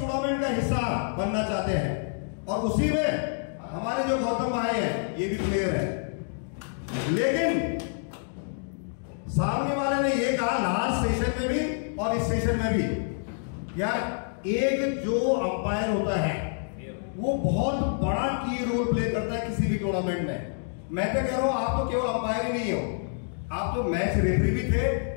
का हिस्सा बनना चाहते हैं और उसी में हमारे जो गौतम भाई हैं ये भी प्लेयर है, लेकिन सामने वाले ने ये कहा लास्ट सेशन में भी और इस सेशन में भी, यार एक जो अंपायर होता है वो बहुत बड़ा की रोल प्ले करता है किसी भी टूर्नामेंट में। मैं तो कह रहा हूं आप तो केवल अंपायर ही नहीं हो, आप तो मैच रेफरी भी थे,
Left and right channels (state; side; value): silent; right; digital silence